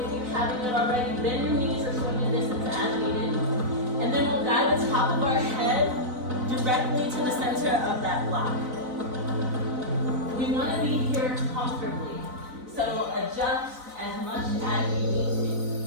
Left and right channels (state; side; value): late; left; 4.0 ms